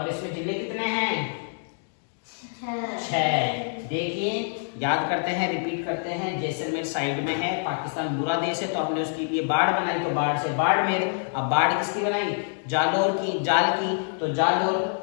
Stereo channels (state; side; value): silent; right; 61 dB below the other